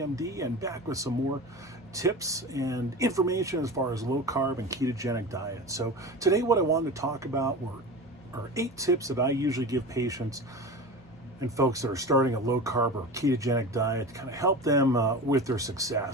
and back with some more tips and information as far as low carb and ketogenic diet. So today what I wanted to talk about are 8 tips that I usually give patients and folks that are starting a low carb or ketogenic diet to kind of help them with their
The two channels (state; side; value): normal; both; correlation 0.31